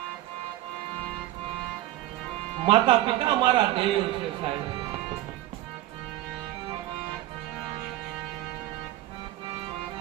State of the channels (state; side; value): quieter; left; 15.4 dB